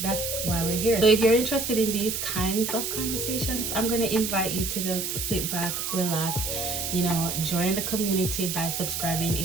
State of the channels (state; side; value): noise; right; hiss, 3 dB below the sound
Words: That's why we're here. So if you're interested in these kinds of conversations, I'm gonna invite you to just sit back, relax, join the community by subscribing